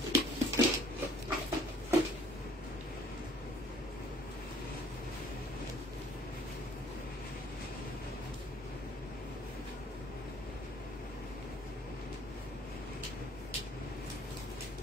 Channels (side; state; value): both; normal; correlation 0.56